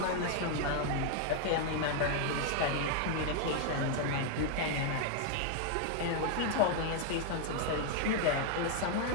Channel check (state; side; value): different; both; correlation 0.00